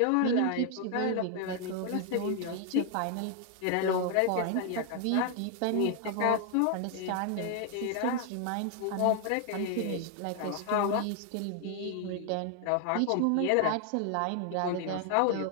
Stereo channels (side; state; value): both; different; correlation 0.00